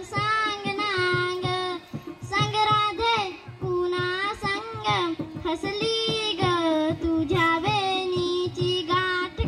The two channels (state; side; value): identical; both; correlation 1.00